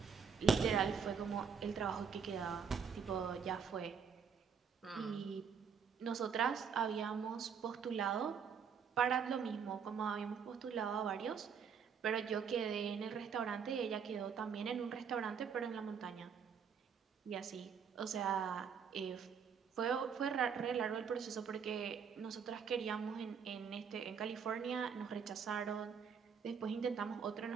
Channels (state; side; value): quieter; left; 6.7 dB